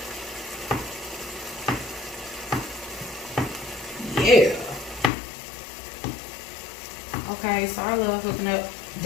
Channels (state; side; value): drops out; right; at 5.1 s